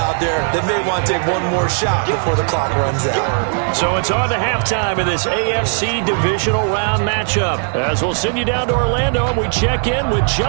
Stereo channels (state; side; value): silent; left; 56 dB below the other